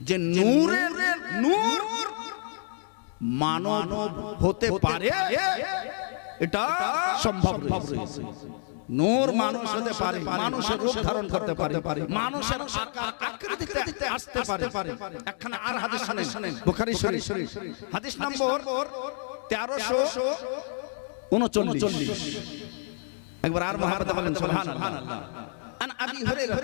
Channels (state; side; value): silent; right; 59 dB below the other